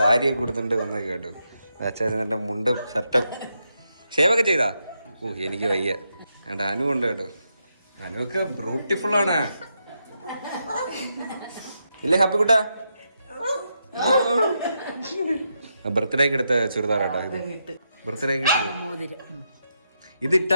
കൊടുത്തിട്ട് വന്നേക്ക് കേട്ടോ. അച്ഛൻ നല്ല മുണ്ടും ഷർട്ടും ഷേവൊക്കെ ചെയ്താ. എനിക്ക് വയ്യ. വേണ്ട, അനു ഉണ്ട് കേട്ടോ. അനുവൊക്കെ ബ്യൂട്ടിഫുൾ ആണ് ഇല്ലേ ഹാപ്പി കുട്ടാ? ബർത്ത്ഡേക്ക് എടുത്ത ചുരിദാറാട്ടോ ഇത്. ബർത്ത്ഡേക്ക്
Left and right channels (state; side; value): inverted; both; correlation -0.83